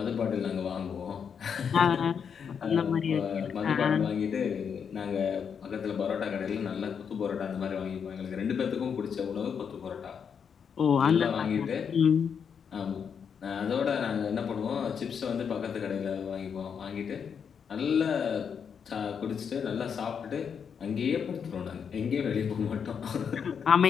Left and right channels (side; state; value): right; quieter; 7.0 dB